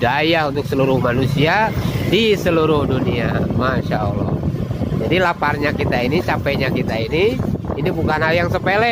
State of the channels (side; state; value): both; identical; correlation 1.00